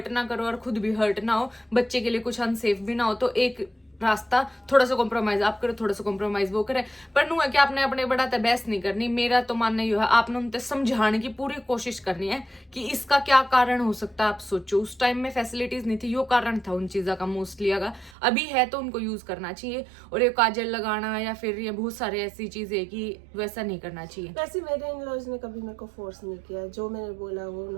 ना करो और खुद भी हर्ट ना हो, बच्चे के लिए कुछ अनसेफ भी ना हो, तो एक रास्ता थोड़ा सा कॉम्प्रोमाइज आप करो, थोड़ा सा कॉम्प्रोमाइज वो करे। पर नु है कि आपने अपने बड़ा बहस नहीं करनी। मेरा तो मानना ये है, आपने उनसे समझाने की पूरी कोशिश करनी है कि इसका क्या कारण हो सकता है। आप सोचो उस टाइम में फैसिलिटीज नहीं थी, यो कारण था उन चीजों का मोस्टली। अगर अभी है तो उनको यूज करना चाहिए, और ये काजल लगाना या फिर ये बहुत सारे ऐसी चीजें कि वैसा नहीं करना चाहिए। वैसे मेरे इन-लॉज ने कभी मेरे को फोर्स नहीं किया, जो मैंने बोला वो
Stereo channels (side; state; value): left; drops out; at 18.2 s